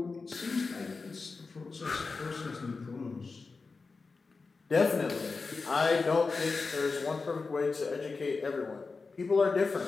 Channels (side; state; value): right; quieter; 4.3 dB